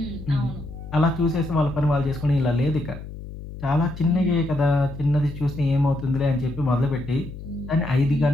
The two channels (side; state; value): left; noise; hum, 12 dB below the sound